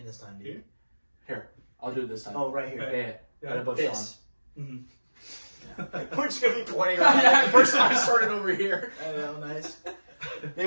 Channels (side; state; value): both; inverted; correlation -1.00